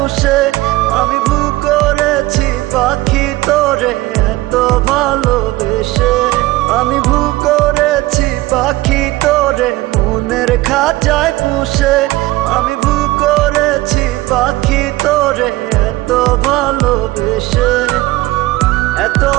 আমি ভুল করেছি পাখি তোরে এত ভালোবেসে। আমি ভুল করেছি পাখি তোরে মনের খাঁচায় পুষে। আমি ভুল করেছি পাখি তোরে এত ভালোবেসে। এত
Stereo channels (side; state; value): left; quieter; 18.8 dB